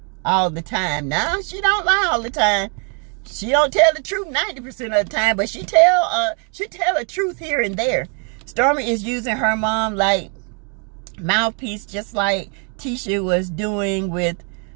all the time. No, she don't lie all the time. She don't tell the truth 90% of the time, but she tell the truth here and there. Stormy is using her mom like mouthpiece, just like Tisha was doing with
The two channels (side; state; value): left; quieter; 38.7 dB